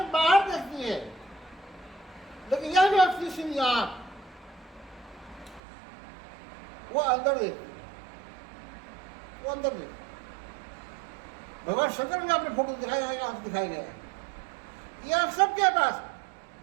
बाहर देखती है, लेकिन यह व्यक्ति सिर्फ आंख वो अंदर देखती है, वो अंदर देखती है। भगवान शंकर ने अपने फोटो दिखाया है, आंख दिखाया गया है। ये आप सबके पास है।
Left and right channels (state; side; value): drops out; left; at 5.6 s